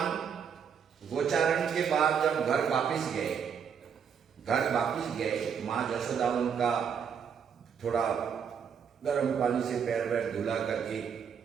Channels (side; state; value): left; quieter; 7.2 dB